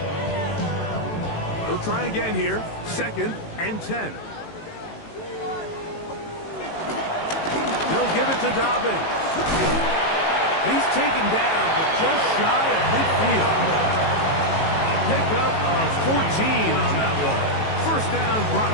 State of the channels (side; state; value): right; late; 18 ms